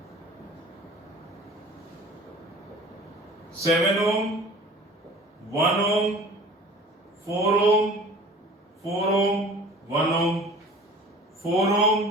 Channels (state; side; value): normal; both; correlation 0.44